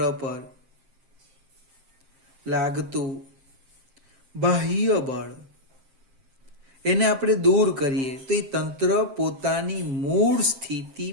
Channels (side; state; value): left; late; 7.5 ms